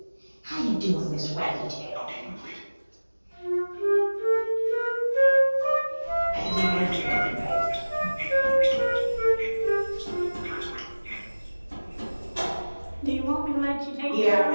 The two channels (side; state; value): both; inverted; correlation -1.00